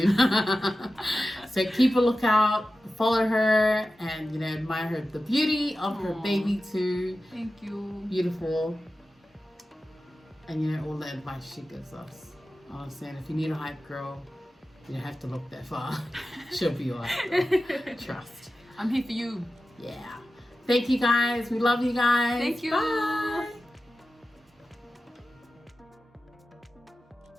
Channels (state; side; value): normal; both; correlation 0.94